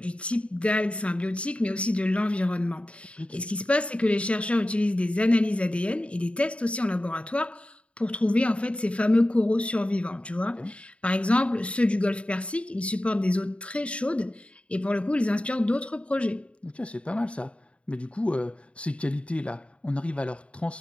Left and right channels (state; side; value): late; right; 0.061 ms